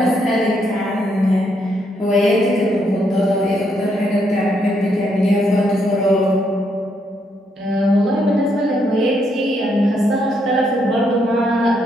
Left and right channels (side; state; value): both; normal; correlation 0.75